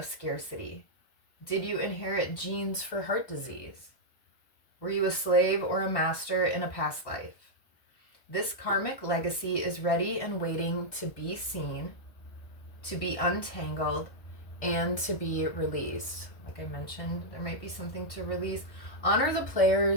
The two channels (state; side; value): late; right; 1.5 ms